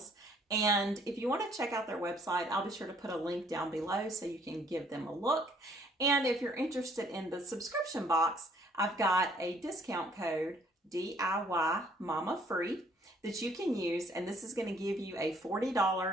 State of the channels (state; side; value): normal; both; correlation 0.62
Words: And if you want to check out their website, I'll be sure to put a link down below so you can give them a look. And if you're interested in the subscription box, I've got a discount code, DIY Mama Free, that you can use. And this is going to give you a